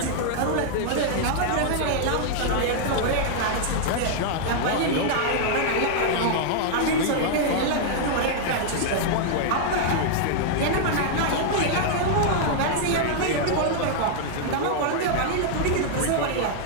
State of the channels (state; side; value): different; both; correlation -0.01